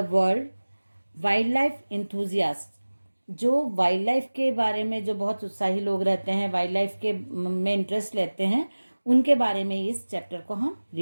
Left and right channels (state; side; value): inverted; both; correlation -1.00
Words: world wild life enthusiast, जो वाइल्ड लाइफ के बारे में जो बहुत उत्साही लोग रहते हैं, वाइल्ड लाइफ के में इंटरेस्ट लेते हैं, उनके बारे में इस चैप्टर को हम